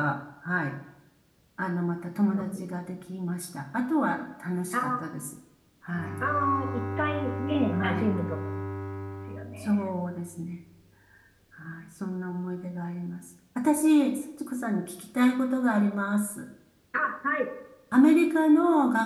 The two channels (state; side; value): identical; both; correlation 1.00